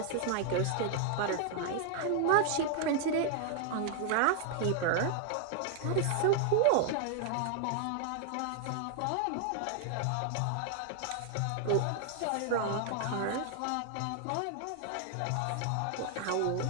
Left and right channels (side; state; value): both; different; correlation 0.00